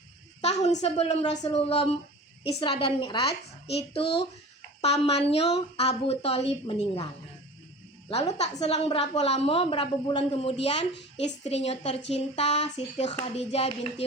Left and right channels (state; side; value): normal; both; correlation 0.38